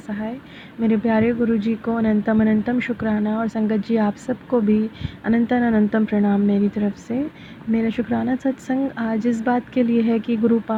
मेरे प्यारे गुरु जी को अनंतम अनंतम शुक्राना, और संगत जी आप सबको भी अनंतन अनंतम प्रणाम मेरी तरफ से। मेरा शुक्राना सत्संग आज इस बात के लिए है कि गुरुपा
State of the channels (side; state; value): both; identical; correlation 1.00